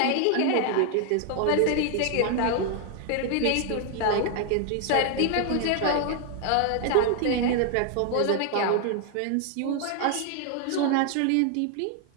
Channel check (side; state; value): both; different; correlation 0.00